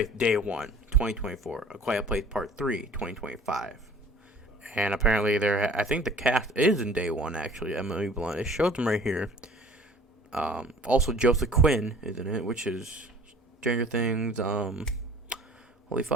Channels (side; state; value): both; normal; correlation 0.49